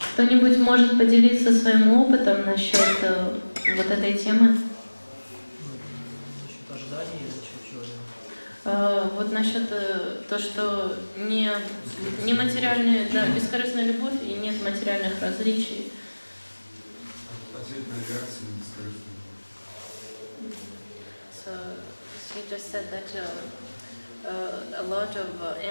Кто-нибудь может поделиться своим опытом насчет вот этой темы? Вот насчет то, что не материальная, да, бескорыстная любовь и нет материальных различий. Ответная реакция на бескорыстную любовь. So she just said that a lot of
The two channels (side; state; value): both; inverted; correlation -1.00